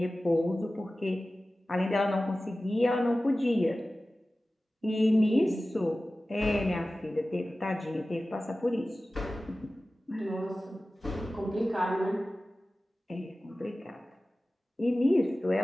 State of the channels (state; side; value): normal; both; correlation 0.96